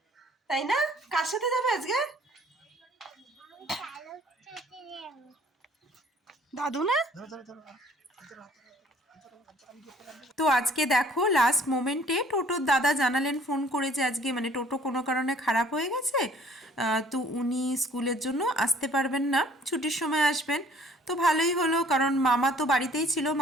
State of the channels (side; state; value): both; normal; correlation 0.56